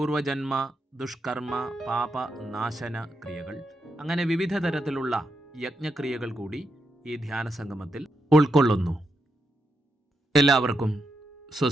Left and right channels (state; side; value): normal; both; correlation 0.83